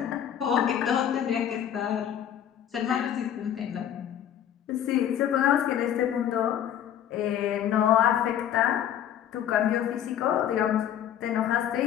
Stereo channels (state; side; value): quieter; right; 10.2 dB